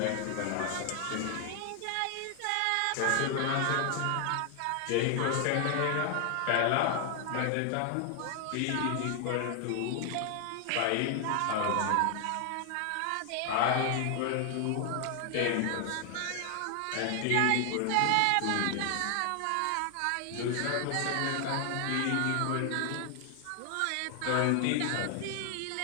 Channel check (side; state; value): both; different; correlation 0.00